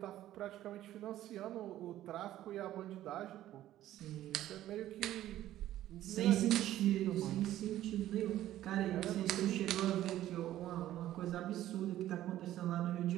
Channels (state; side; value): quieter; left; 13.4 dB